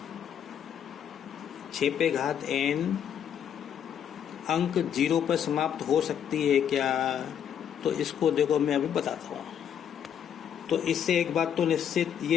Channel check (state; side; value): quieter; right; 8.8 dB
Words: अंक 0 पर समाप्त हो सकती है क्या। तो इसको देखो मैं अभी बताता हूँ। तो इससे एक बात तो निश्चित